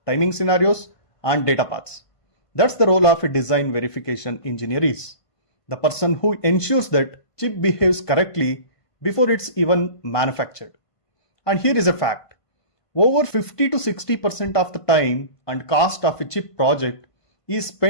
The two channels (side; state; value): right; late; 1.5 ms